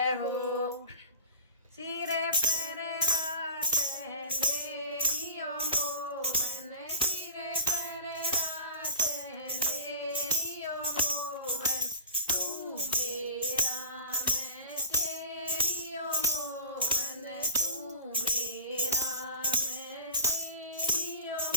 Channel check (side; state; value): both; inverted; correlation -0.39